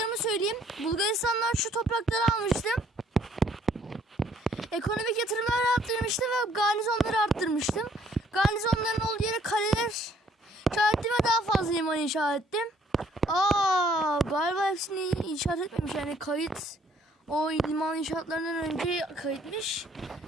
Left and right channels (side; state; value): both; normal; correlation 0.63